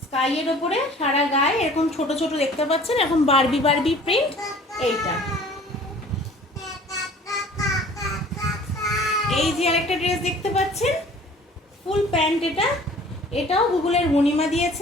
স্কাইয়ের ওপরে সারা গায়ে এরকম ছোট ছোট দেখতে পাচ্ছেন, এখন বারবি বারবি প্রিন্ট। এইটা এই যে আরেকটা ড্রেস দেখতে পাচ্ছেন, ফুল প্যান্ট। এটাও গুগলের মণিমা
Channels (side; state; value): both; normal; correlation 0.49